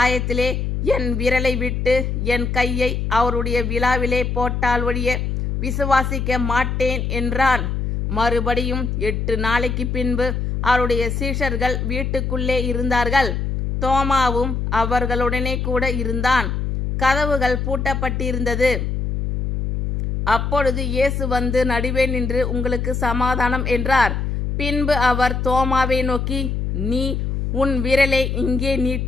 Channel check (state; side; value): noise; left; hum, 1 dB below the sound